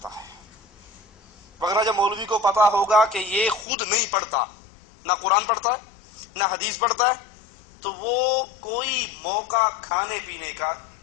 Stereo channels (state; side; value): drops out; right; at 3.7 s